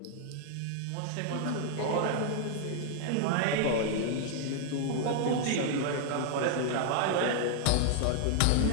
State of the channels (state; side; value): different; both; correlation 0.00